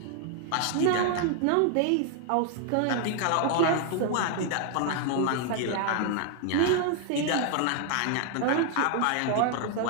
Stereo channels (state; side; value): different; both; correlation 0.00